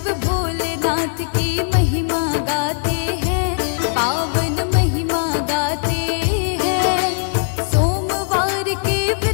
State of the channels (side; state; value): right; silent; 66 dB below the other